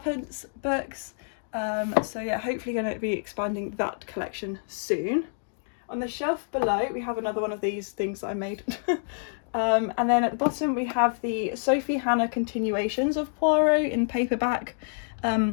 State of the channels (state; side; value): silent; right; digital silence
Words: books. So yeah, hopefully going to be expanding that collection soon. On the shelf below we have another one of these things that I made. And then at the bottom we have the Sophie Hannah continuations of Poirot in paperback.